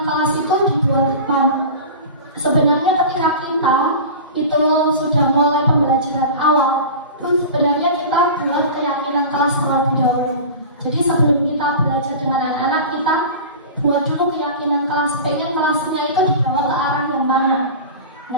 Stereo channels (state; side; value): inverted; both; correlation -0.33